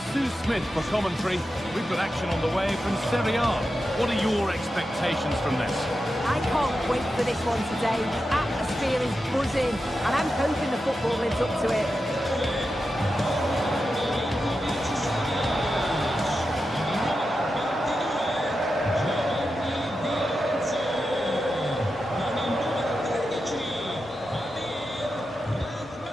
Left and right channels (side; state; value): both; normal; correlation 0.90